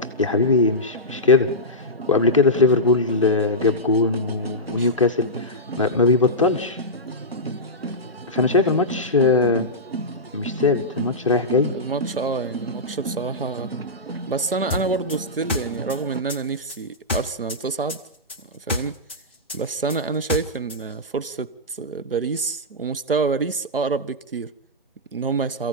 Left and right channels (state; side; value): normal; both; correlation -0.12